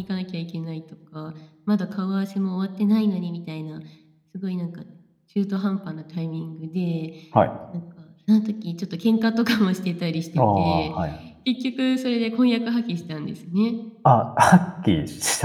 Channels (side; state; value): both; identical; correlation 1.00